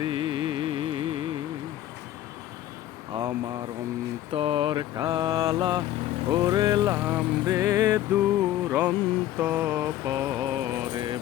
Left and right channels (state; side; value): quieter; right; 13.1 dB